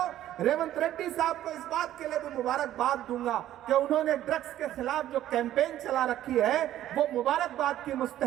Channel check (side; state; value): left; quieter; 12.8 dB